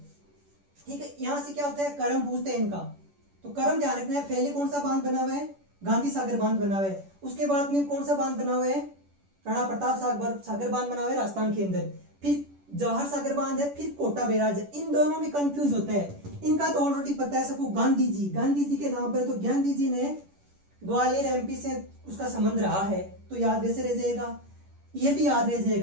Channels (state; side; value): late; left; 10 ms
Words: ठीक है। यहाँ से क्या होता है, करम पूछते हैं इनका, तो करम ध्यान रखना है। पहले कौन सा बांध बना हुआ है, गांधी सागर बांध बना हुआ है, उसके बाद में कौन सा बांध बना हुआ है, राणा प्रताप सागर बांध बना हुआ है राजस्थान के अंदर, फिर जवाहर सागर बांध है, फिर कोटा बैराज है। इन दोनों में कंफ्यूज होता है, इनका तो ऑलरेडी पता है सबको, गांधी जी के नाम पर, तो गांधी जी ने ग्वालियर एमपी से उसका संबंध रहा है, तो याद वैसे रह जाएगा, ये भी याद रह